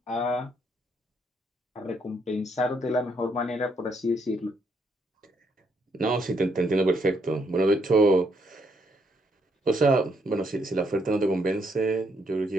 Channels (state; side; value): normal; both; correlation 0.73